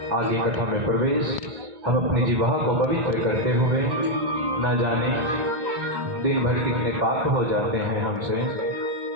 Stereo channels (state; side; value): late; left; 2.0 ms